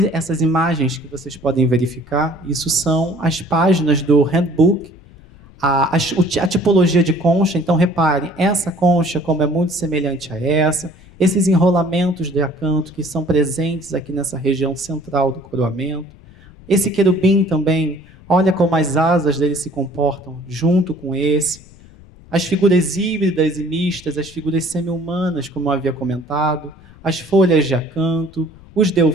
essas imagens que vocês podem verificar, isso são as páginas do handbook, a tipologia de concha. Então, reparem, essa concha, como é muito semelhante a essa, esses enrolamentos de acanto que são presentes aqui nessa região central do coroamento. Esse querubim também, olha como as asas dele se comportam junto com esse. As figuras híbridas e mistas, as figuras semi-humanas, como eu havia comentado, as folhas de acanto, os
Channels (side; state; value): left; noise; rumble, 23 dB below the sound